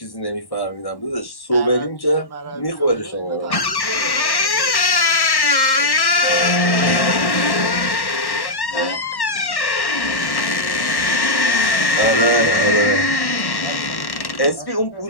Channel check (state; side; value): late; right; 1.1 ms